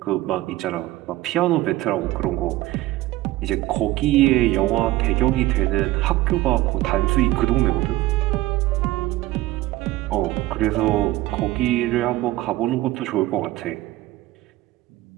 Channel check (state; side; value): quieter; left; 16.8 dB